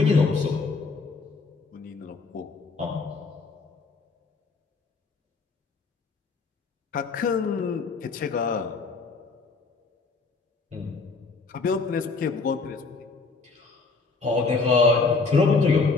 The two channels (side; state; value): right; quieter; 4.2 dB